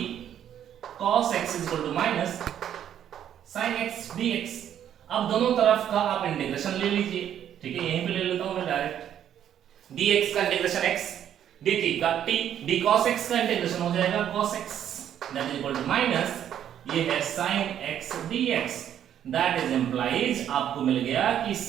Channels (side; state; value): left; quieter; 10.1 dB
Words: cos x is equal to minus sin x dx। अब दोनों तरफ का आप इंटीग्रेशन ले लीजिए, ठीक है, यहीं पे ले लेता हूं मैं डायरेक्ट। dx का इंटीग्रेशन x, dt का t, d cos x का इंटीग्रेशन हो जाएगा cos x that is equal to minus ये है sin x dx। That is implies आपको मिल गया कि